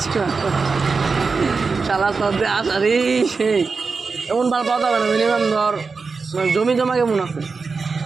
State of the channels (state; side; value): quieter; left; 4.6 dB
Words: মাল। শালা তোর আসারি সেই এমন মাল পাওয়া যাবে না। মিনিমাম ধর মানে জমি জমা কেমন আছে?